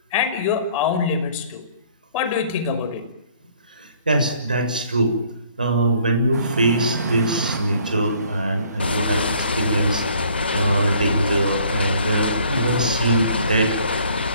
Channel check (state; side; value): inverted; both; correlation -0.58